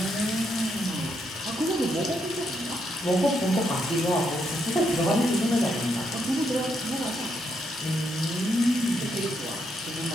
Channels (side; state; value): both; normal; correlation 0.77